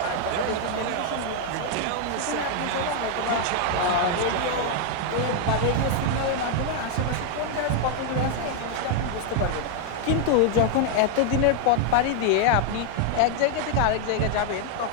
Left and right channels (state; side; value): different; both; correlation 0.00